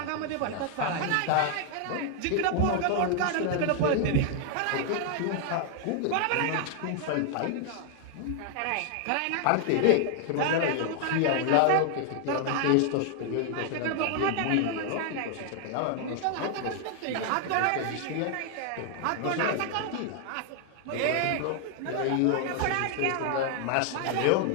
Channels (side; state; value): both; different; correlation 0.00